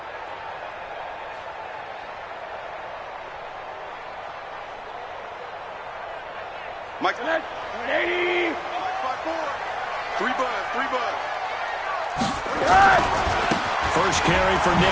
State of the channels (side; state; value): both; identical; correlation 1.00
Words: Mike, 180. 3 bud. First carry for